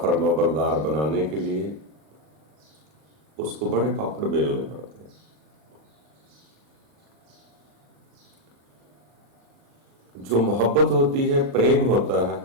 बरदार बनाने के लिए उसको बड़े पापड़ बेलने पड़ते हैं। जो मोहब्बत होती है, प्रेम होता है,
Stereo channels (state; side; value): late; left; 39 ms